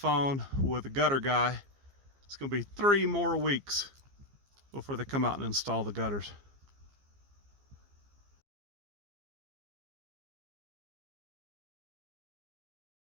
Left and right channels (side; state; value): left; late; 15 ms